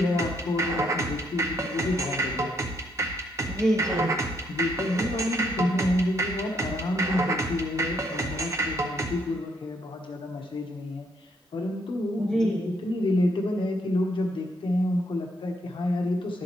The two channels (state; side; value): normal; both; correlation 0.72